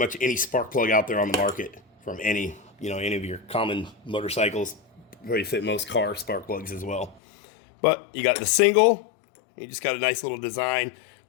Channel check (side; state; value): right; drops out; at 7.2 s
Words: any spark plug out there on the market from any of your common motorcycles. Probably fit most car spark plugs as well. But you got the single. You just got a nice little design.